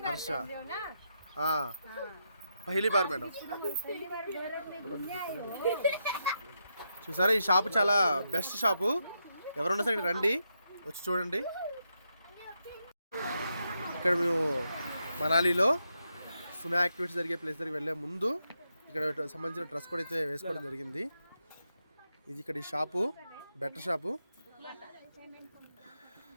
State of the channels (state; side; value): inverted; both; correlation -0.83